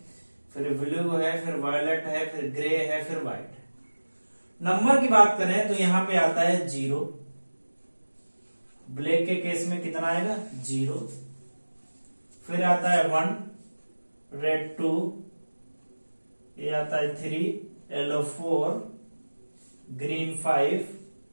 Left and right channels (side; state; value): both; inverted; correlation -1.00